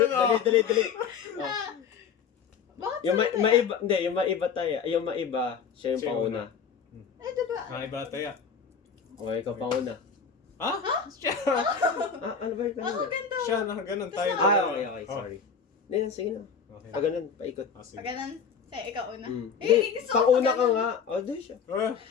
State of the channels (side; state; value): right; quieter; 6.4 dB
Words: no? Dali. O, Bakit yung sa'yo tayo? maiba, hindi, yung maiba tayo. Yung maiba, siya yung Siya yung panguna. Ay, diba? Ay, bataya. O, ikaw panguna. Ha? Siya! Ah, ano ba yung Ako kanina? ganda. Siya, nakaganon tayo. Ah, dalawa. okay, Oh. sorry. Hindi, sige na. Okay. Pag ganun, paikot. Ah, sige. Pag ganun, sa'yo, ikaw una. Mm. Eh, Hindi, gusto ko panguna pag ka ganun. nga. O, doon siya. Ah,